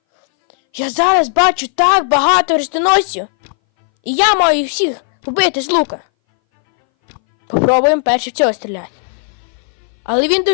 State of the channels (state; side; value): silent; right; 62 dB below the other